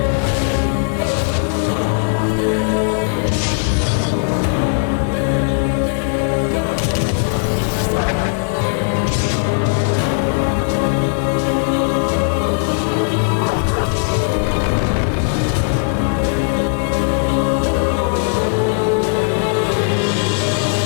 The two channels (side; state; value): right; silent; digital silence